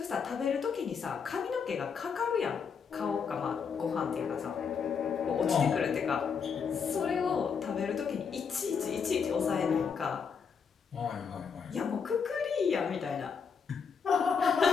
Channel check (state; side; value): quieter; right; 6.2 dB